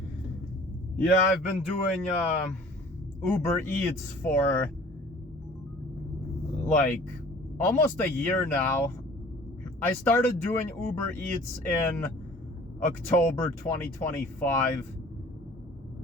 Yeah, I've been doing Uber Eats for like almost a year now. I started doing Uber Eats in October 2025.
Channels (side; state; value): both; normal; correlation 0.49